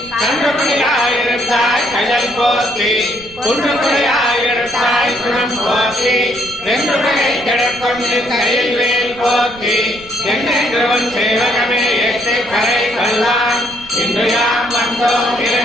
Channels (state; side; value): noise; right; rumble, 20 dB below the sound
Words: கன்றுபடியாயிருந்தாய் கயல் போற்றி குன்றுபடியாயிருந்தாய் குணம் போற்றி வென்றுடையை கிடக்கொண்டு கையில் வேல் போற்றி என்னென்றவன் சேவகமே எட்டு கரை கொள்ளான் இன்று யாம் வந்தோம்